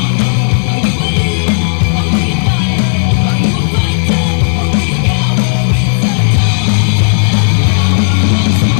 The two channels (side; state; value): right; silent; digital silence